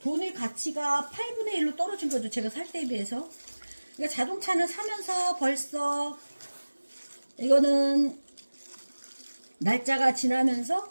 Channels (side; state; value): both; inverted; correlation -1.00